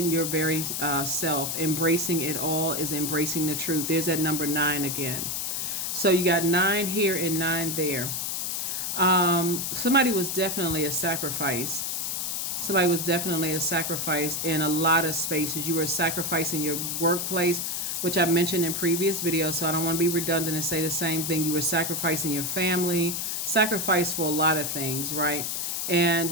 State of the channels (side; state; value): left; noise; hiss, 2 dB below the sound